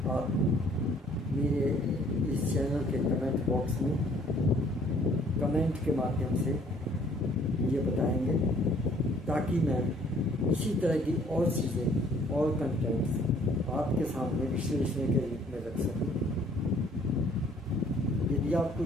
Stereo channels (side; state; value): both; normal; correlation 0.59